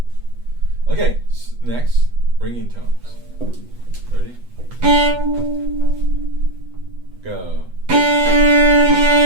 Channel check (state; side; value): late; left; 8.1 ms